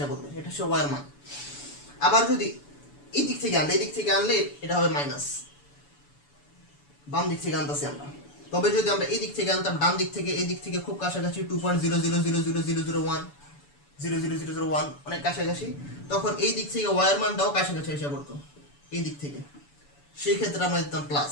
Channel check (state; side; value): late; right; 7.0 ms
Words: পড়বে, এটা হচ্ছে y এর মান। আবার যদি এই দিক থেকে আনলে এটা হবে মাইনাস, বাম দিক থেকে আনতেছি আমরা। তবে যদি আমরা এই দিক থেকে আনতাম, ডান দিক থেকে এই দিক থেকে খুব কাছাকাছি 2.000000001 00001 অনেক কাছাকাছি, তখন এই দিক থেকে y এর মানটাও কাছাকাছি এসে পড়তো এই দিক থেকে, সেই ক্ষেত্রে আমরা দিতাম প্লাস।